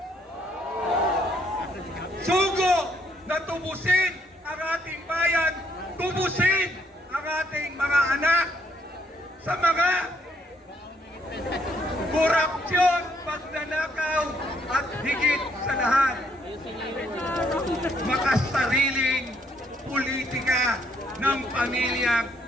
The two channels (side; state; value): both; normal; correlation 0.70